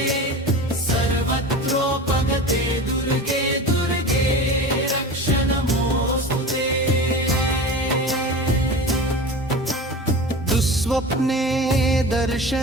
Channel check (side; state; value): both; normal; correlation 0.33